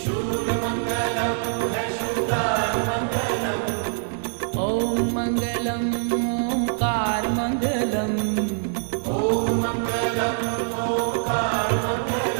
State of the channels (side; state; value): left; silent; 60 dB below the other